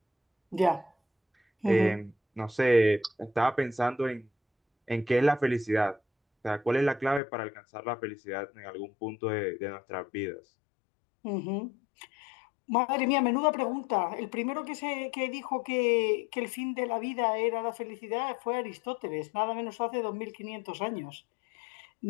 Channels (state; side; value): drops out; right; at 7.2 s